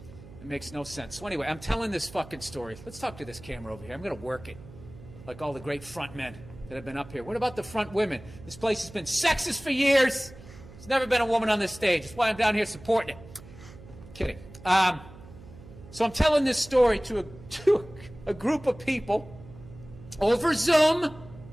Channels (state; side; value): noise; right; hum, 18 dB below the sound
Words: It makes no sense. So anyway, I'm telling this fucking story. Let's talk to this camera over here. I'm going to work it, like all the great front men that have been up here. What about the front women? This place has been sexist for years. There's never been a woman on this stage. That's why I'm down here supporting it. Kidding. So I'm telling this story to a group of people over Zoom